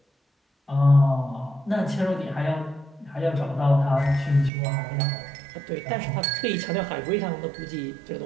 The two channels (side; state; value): left; drops out; at 4.5 s